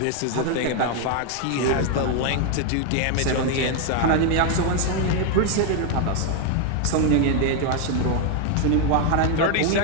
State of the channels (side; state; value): both; different; correlation 0.01